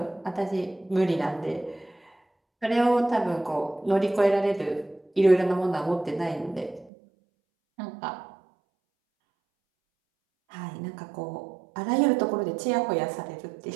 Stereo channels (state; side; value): drops out; left; at 6.9 s